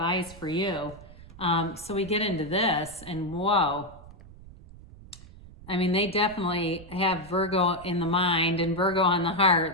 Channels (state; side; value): noise; right; rumble, 19 dB below the sound